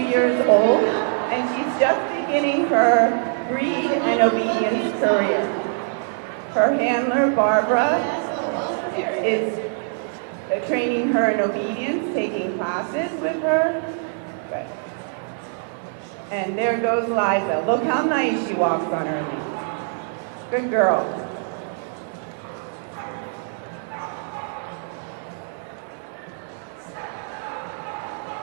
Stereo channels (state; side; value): silent; left; 63 dB below the other